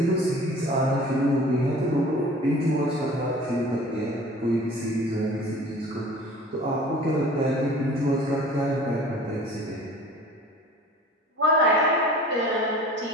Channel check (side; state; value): both; normal; correlation 0.44